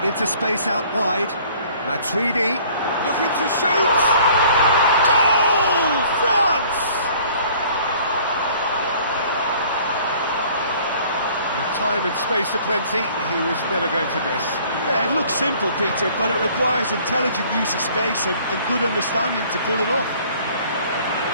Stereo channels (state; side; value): inverted; both; correlation -0.54